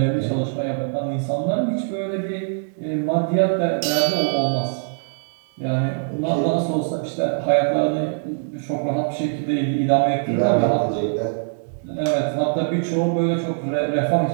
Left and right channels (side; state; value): left; silent; 64 dB below the other